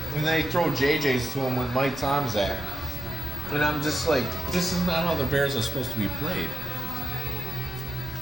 and they throw JJs to him with Mike Tomczak. And I'm just like, this is not how the Bears are supposed to be played.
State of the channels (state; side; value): normal; both; correlation 0.90